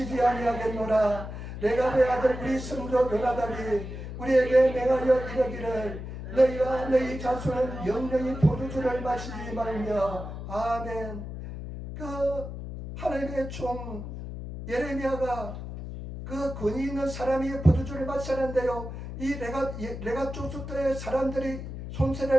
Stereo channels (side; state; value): left; noise; hum, 8 dB below the sound